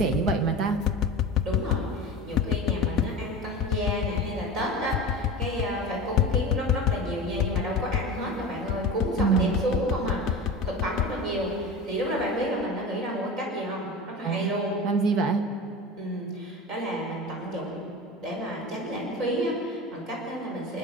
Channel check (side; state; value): both; normal; correlation 0.30